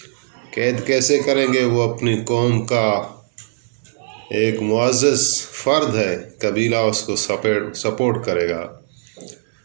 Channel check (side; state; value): left; silent; digital silence